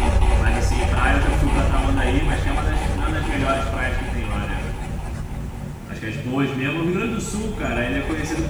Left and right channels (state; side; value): identical; both; correlation 1.00